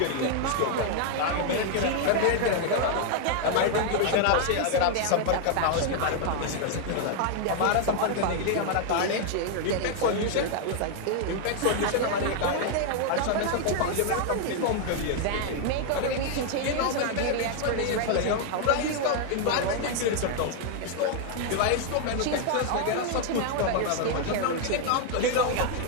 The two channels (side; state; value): both; different; correlation 0.00